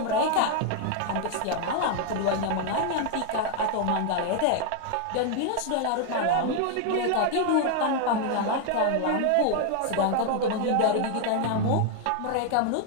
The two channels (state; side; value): different; both; correlation 0.00